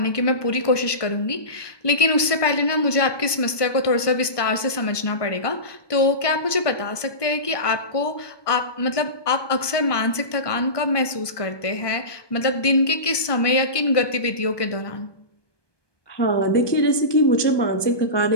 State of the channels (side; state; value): right; late; 1.2 ms